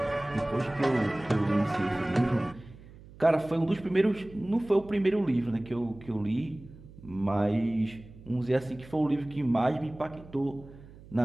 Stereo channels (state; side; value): noise; right; hum, 20 dB below the sound